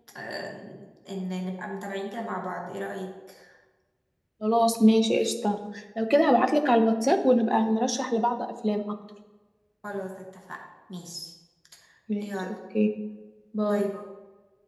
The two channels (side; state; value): both; identical; correlation 1.00